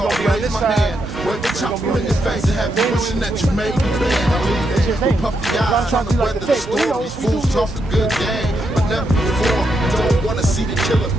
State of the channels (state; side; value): normal; both; correlation 0.81